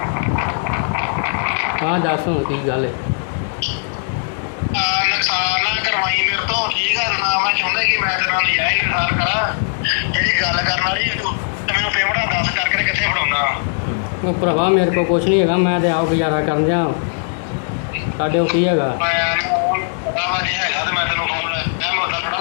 ਹਾਂ ਦੱਸ ਹੁਣ ਕੀ ਗੱਲ ਹੈ? ਨੁਕਸਾਨ ਨਾ ਕਰਵਾਈ ਮੇਰੇ ਤੋਂ, ਠੀਕ ਆ ਨਾ। ਮੈਂ ਚਾਹੁੰਦਾ ਕਿ ਮੈਂ ਤੇਰੇ ਨਾਲ ਨਜਾਇਜ਼ ਇਨਸਾਰ ਕਰਾਂ। ਜਿਹੜੀ ਗੱਲ ਕਰਨ ਵਾਲੀ ਤੇ ਮੈਨੂੰ ਪੇਮੈਂਟਾਂ ਦੱਸ ਕਰਕੇ ਕਿੱਥੇ ਫੜਾਉਂਦਾ। ਉਹ ਭਰਾਵਾ ਮੇਰੇ ਕੋਲ ਕੁਛ ਨਹੀਂ ਹੈਗਾ, ਮੈਂ ਤੇ ਆਪ ਗੁਜ਼ਾਰਾ ਕਰਨ ਜਾ। ਸਾਡੇ ਕੋਲ ਕੀ ਹੈਗਾ? ਪਤਾ ਵਾ ਨਹੀਂ ਹੈਗਾ ਤੇ ਮੈਂ ਤੈਨੂੰ ਫੋਨ ਮੈਂ ਮੁੱਦਾ ਥੋੜਾ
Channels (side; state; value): right; silent; digital silence